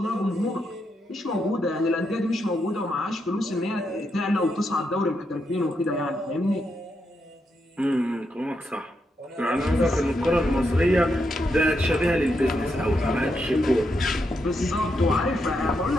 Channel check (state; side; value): normal; both; correlation 0.82